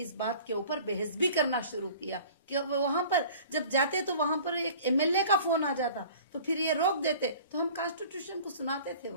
बात के ऊपर बहस भी करना शुरू किया कि वहां पर जब जाते तो वहां पर एक एमएलए का फोन आ जाता तो फिर ये रोक देते, तो हम कॉन्स्टिट्यूशन को सुनाते थे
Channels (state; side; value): inverted; both; correlation -0.46